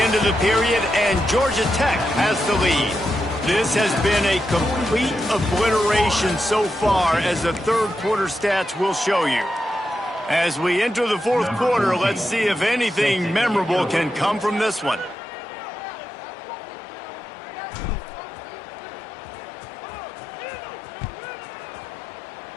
of the period, and Georgia Tech has the lead. This has been a complete obliteration so far, as the third quarter stats will show you. As we enter the fourth quarter, let's see if anything memorable can come from this one.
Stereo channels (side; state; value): right; drops out; at 15.2 s